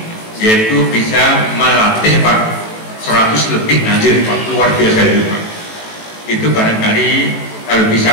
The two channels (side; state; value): right; late; 18 ms